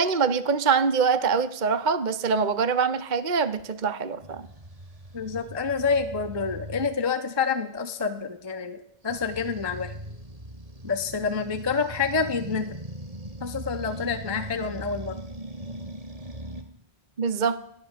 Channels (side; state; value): left; late; 1.2 ms